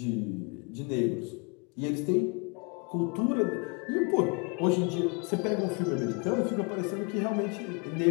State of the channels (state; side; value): quieter; right; 32.9 dB